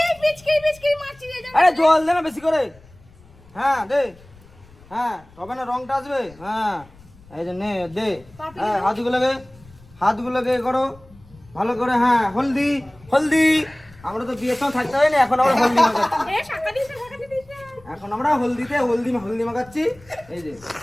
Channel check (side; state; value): left; noise; rumble, 25 dB below the sound